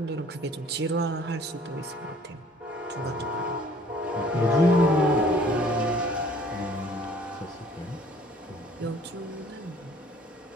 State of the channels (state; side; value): normal; both; correlation 0.55